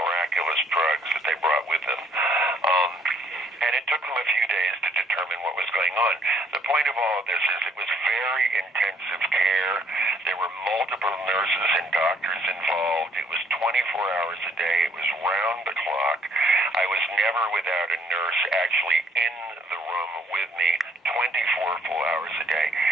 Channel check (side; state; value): both; normal; correlation 0.64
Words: drugs that they brought with them. And it took them a few days to determine what was going on. The point of all of this is it was very intensive care. There were multiple nurses and doctors involved. It was 24 hours a day. It was round the clock. I was never without a nurse actually in the room with me 24 full hours a day.